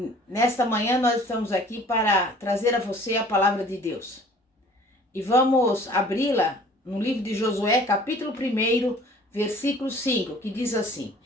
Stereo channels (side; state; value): both; normal; correlation 0.51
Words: Nesta manhã nós estamos aqui para trazer a você a palavra de Deus. E vamos abri-la no livro de Josué, capítulo 1, versículo 5, que diz assim: